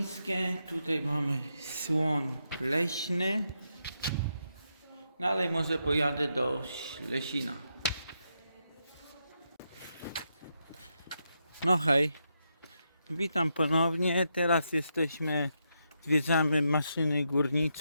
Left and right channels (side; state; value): both; inverted; correlation -0.82